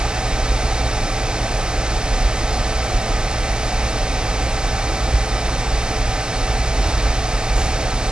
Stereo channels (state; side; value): normal; both; correlation 0.92